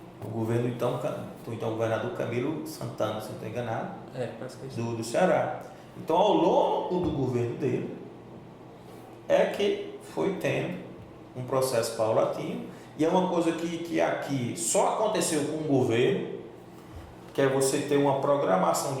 O governo, então governador Camilo Santana, se não estou enganado, Parece que é isso. do Ceará. Então, ao longo do governo dele, é que foi tendo um processo paulatino, e é uma coisa que aqui só aconteceu com o governo, que é você ter uma programação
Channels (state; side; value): identical; both; correlation 1.00